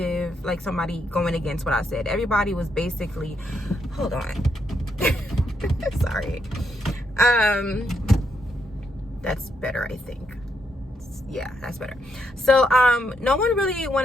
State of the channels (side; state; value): both; normal; correlation 0.78